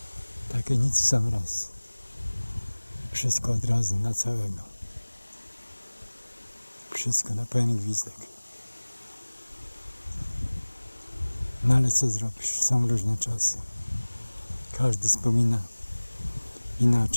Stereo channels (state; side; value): inverted; both; correlation -1.00